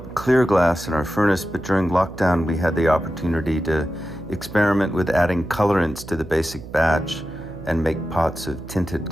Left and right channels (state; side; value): noise; right; hum, 14 dB below the sound